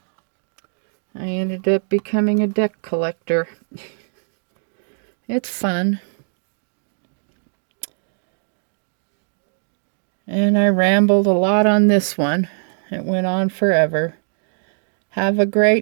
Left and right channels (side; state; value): left; silent; digital silence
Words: I ended up becoming a deck collector. It's fun. And I rambled a lot on this one. It went on forever. Have a